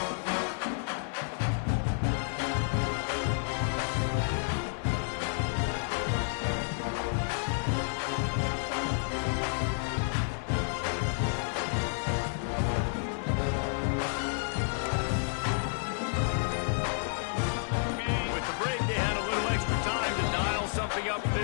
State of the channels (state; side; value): silent; right; 57 dB below the other